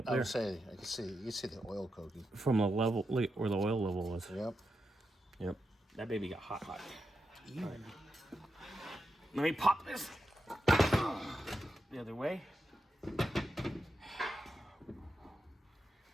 I there. would say, you can see the oil coking. From the level, look at where the oil level was. Yep. Yep. That baby got hot. Right. Let me pop this the other way.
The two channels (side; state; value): both; normal; correlation 0.87